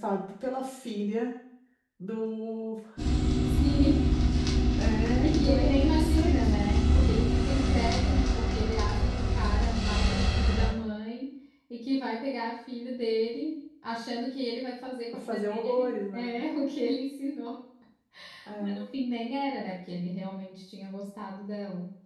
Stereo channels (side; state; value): both; identical; correlation 1.00